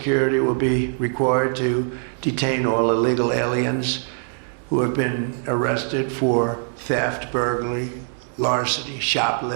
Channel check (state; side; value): silent; left; 59 dB below the other